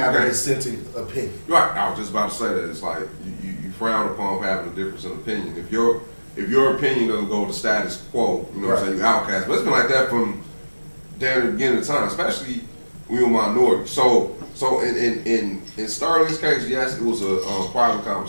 a dissenting opinion? Right, I was just about to say that. It's like you frown upon having a difference in opinion. If your opinion doesn't go with the status quo, you know what I'm saying, you outcast. But it's been like that from damn the beginning of time, especially when we were minority. So in Sterling's case, yes, it was a private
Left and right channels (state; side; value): inverted; both; correlation -1.00